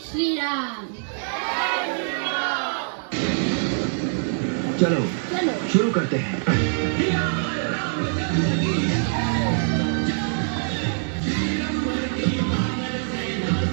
श्री राम। चलो चलो शुरू करते हैं।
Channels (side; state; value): left; silent; 56 dB below the other